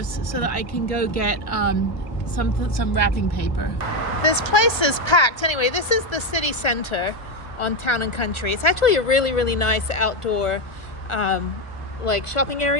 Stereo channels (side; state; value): right; late; 1.3 ms